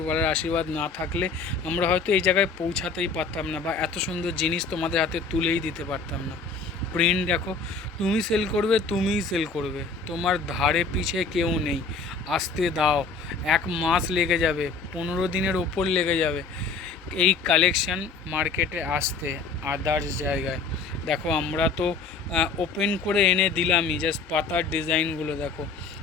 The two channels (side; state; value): right; quieter; 4.5 dB